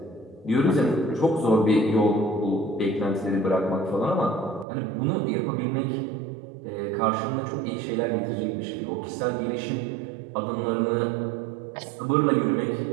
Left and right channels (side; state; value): left; drops out; at 4.7 s